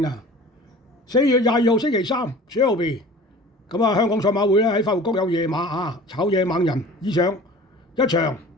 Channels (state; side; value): normal; both; correlation 0.43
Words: 啊。4月22號星期三，12咁啊，香港賽馬會咧喺快活谷有夜馬啊，炒嘢猛人以上一場